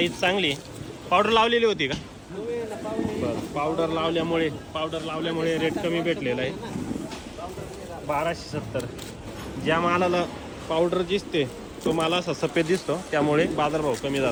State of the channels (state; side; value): identical; both; correlation 1.00